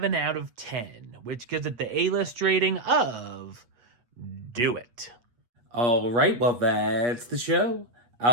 out of 10, which gives it the A-list rating of Do It. Alright, well that's the show.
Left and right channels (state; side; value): late; left; 8.3 ms